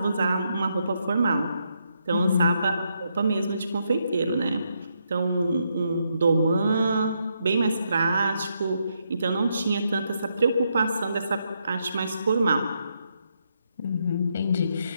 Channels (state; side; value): inverted; both; correlation -0.79